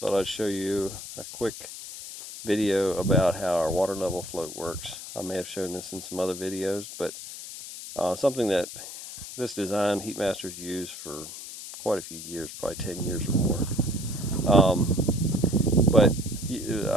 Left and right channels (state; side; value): noise; left; hiss, 11 dB below the sound